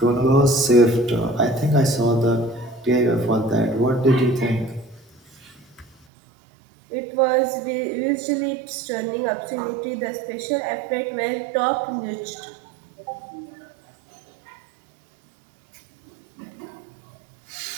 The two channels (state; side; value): drops out; left; at 6.1 s